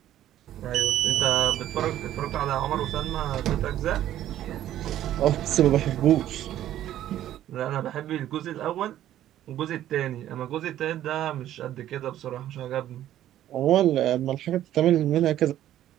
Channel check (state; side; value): quieter; left; 12.4 dB